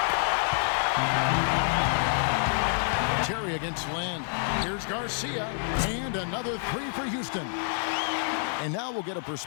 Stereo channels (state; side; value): silent; right; digital silence